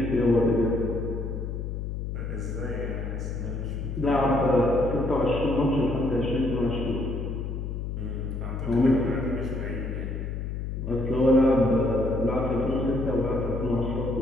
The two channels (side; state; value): left; noise; hum, 4 dB below the sound